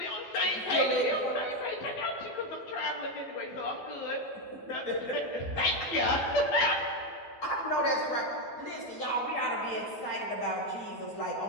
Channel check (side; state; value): right; late; 12 ms